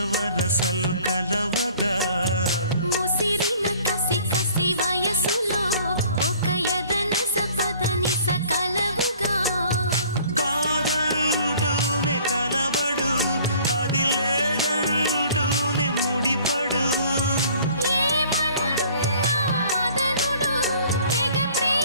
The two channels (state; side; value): inverted; both; correlation -0.53